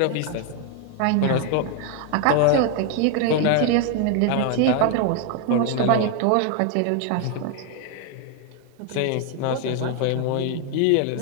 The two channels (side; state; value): both; different; correlation 0.00